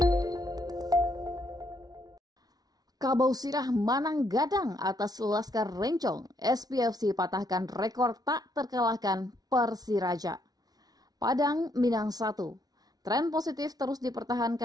sirah Manang Gadang atas Laskar Rencong, SPFC patahkan rekor tak terkalahkan Persiraja. Padang Minang 1. Tren positif terus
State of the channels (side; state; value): left; late; 0.19 ms